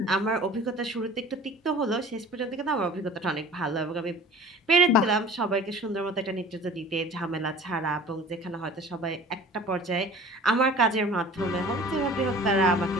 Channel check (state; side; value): normal; both; correlation 0.43